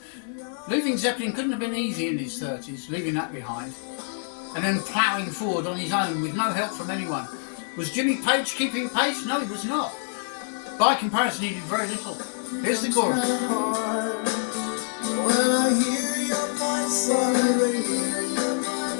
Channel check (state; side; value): silent; right; digital silence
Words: Leaving Zeppelin couldn't have been easy in his 30s, leaving that behind, and then ploughing forward on his own with no help from anyone. Was Jimmy Page keeping pace? No, he was not. By comparison, he did very little. Here's the chorus. When I hear your voice on the radio,